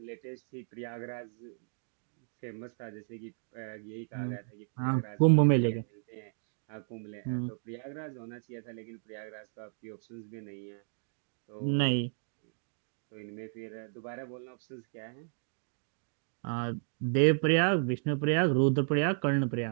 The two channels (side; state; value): left; silent; digital silence